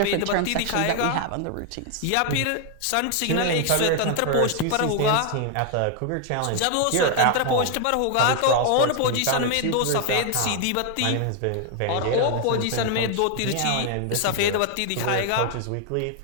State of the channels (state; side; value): different; both; correlation 0.00